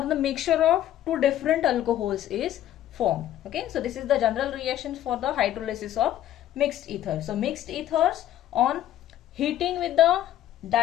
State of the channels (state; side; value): quieter; right; 12.3 dB